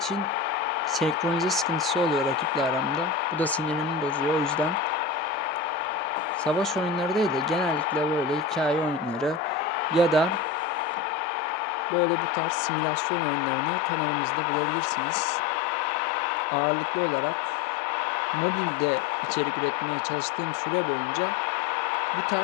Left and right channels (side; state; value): right; drops out; at 11.1 s